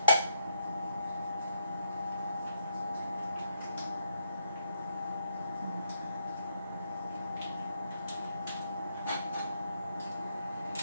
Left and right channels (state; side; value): inverted; both; correlation -0.76